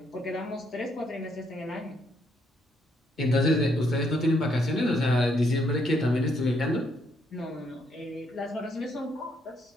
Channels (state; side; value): normal; both; correlation 0.73